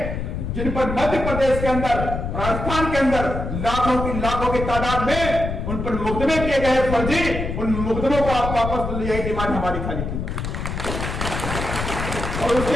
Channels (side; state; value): left; noise; rumble, 4 dB below the sound